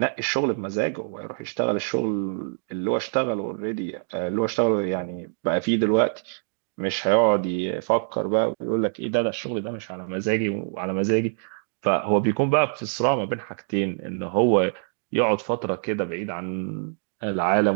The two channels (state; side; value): silent; left; 62 dB below the other